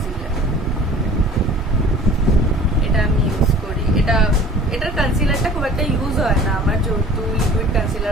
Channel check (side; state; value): both; normal; correlation 0.46